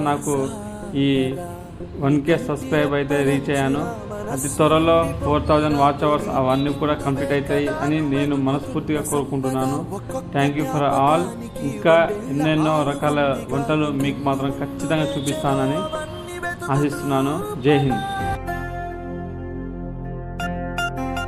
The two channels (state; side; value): identical; both; correlation 1.00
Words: నాకు ఈ 1K సబ్స్క్రైబ్ అయితే రీచ్ అయ్యాను. అతి త్వరలో 4000 వాచ్ అవర్స్ అవన్నీ కూడా కంప్లీట్ అవుతాయి అని నేను మనస్ఫూర్తిగా కోరుకుంటున్నాను. Thank you for all. ఇంకా ఎన్నెన్నో రకాల వంటలు మీకు మాత్రం ఖచ్చితంగా చూపిస్తానని ఆశిస్తున్నాను. జై హింద్.